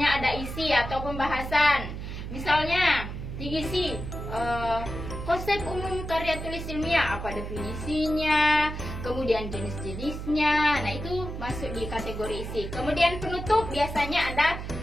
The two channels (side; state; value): right; noise; hum, 7 dB below the sound